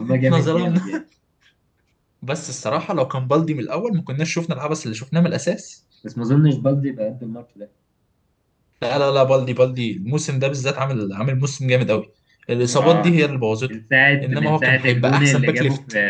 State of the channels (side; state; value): both; identical; correlation 1.00